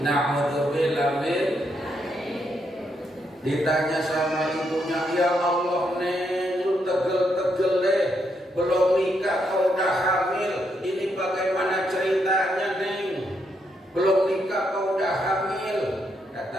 min. Ditanya sama ibunya, ya Allah Neng, lu tegel-tegel deh, belum nikah kau udah hamil, ini bagaimana ceritanya Neng? Belum nikah kau udah hamil. Kata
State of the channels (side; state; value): both; normal; correlation 0.78